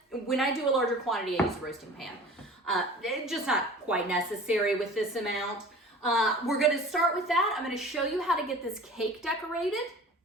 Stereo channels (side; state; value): both; normal; correlation 0.42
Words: When I do a larger quantity, I use a roasting pan. It's just not quite necessary with this amount. We're gonna start with that. I'm gonna show you how to get this cake decorated.